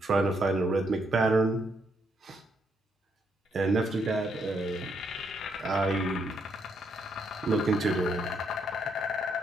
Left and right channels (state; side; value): normal; both; correlation 0.75